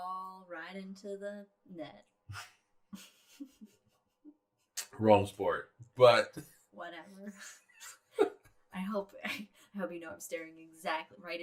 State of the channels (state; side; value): identical; both; correlation 1.00